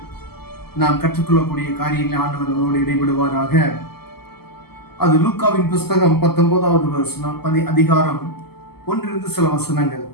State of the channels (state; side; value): late; right; 0.96 ms